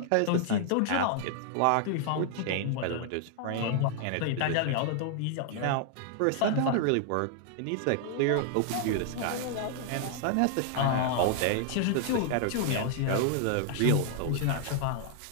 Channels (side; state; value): both; different; correlation 0.00